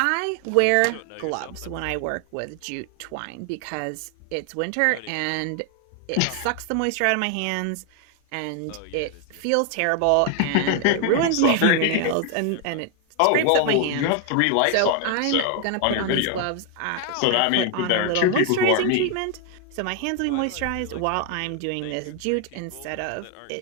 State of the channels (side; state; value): both; different; correlation 0.00